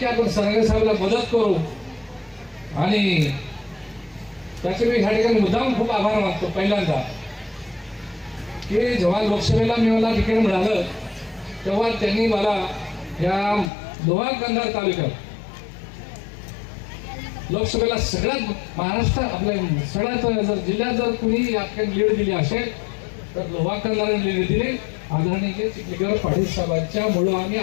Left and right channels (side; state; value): right; drops out; at 13.7 s